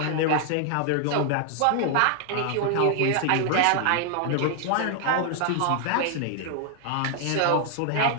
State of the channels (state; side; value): different; both; correlation 0.00